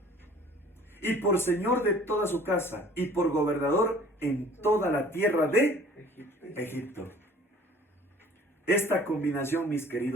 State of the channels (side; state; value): both; normal; correlation 0.50